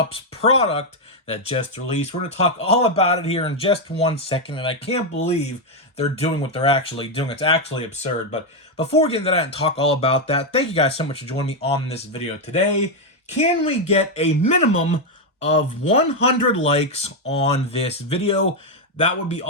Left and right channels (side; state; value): both; normal; correlation 0.03